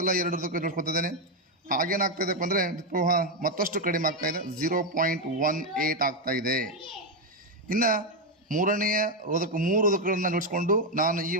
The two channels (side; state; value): both; normal; correlation 0.05